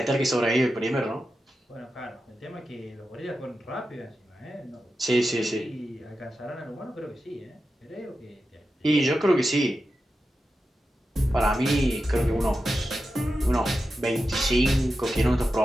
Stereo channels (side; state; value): both; normal; correlation 0.91